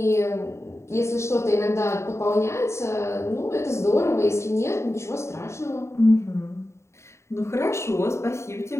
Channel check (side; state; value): right; late; 0.13 ms